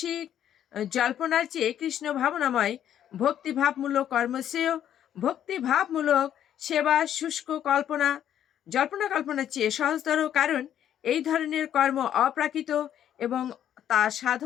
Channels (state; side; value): quieter; right; 10.4 dB